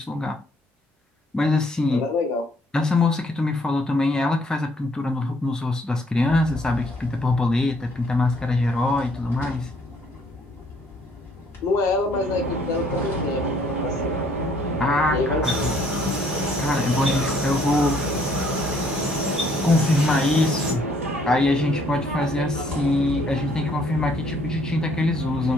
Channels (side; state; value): both; normal; correlation 0.64